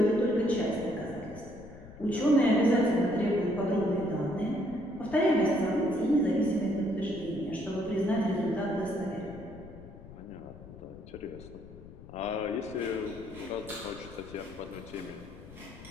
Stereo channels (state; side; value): noise; left; rumble, 17 dB below the sound